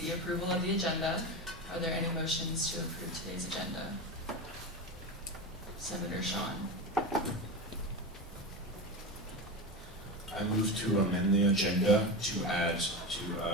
approval of the agenda. Are there any motions to approve today's agenda? Senator Sean. I move to amend the agenda to add to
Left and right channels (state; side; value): normal; both; correlation 0.22